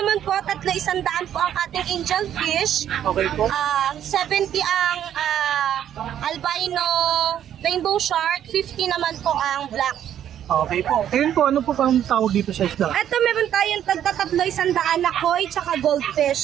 po, 300 po ang ating angel fish. Okay po. 70 ang albino rainbow shark, 50 naman po ang black. Okay po. Ayun po, ano po bang tawag dito sa isda? Ito meron tayong tagtatatlo 100 na koi tsaka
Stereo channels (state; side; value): quieter; left; 10.4 dB